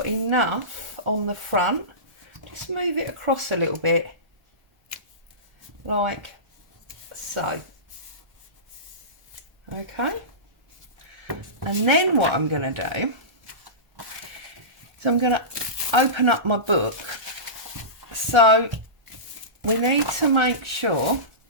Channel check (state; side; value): late; left; 1.0 ms